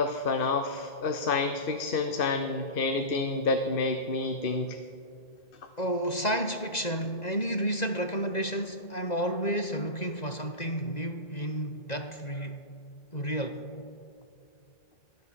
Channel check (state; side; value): late; right; 2.0 ms